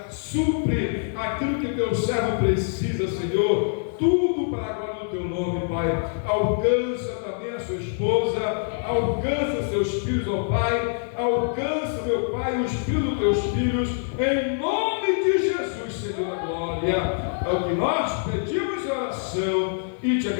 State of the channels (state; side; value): silent; right; digital silence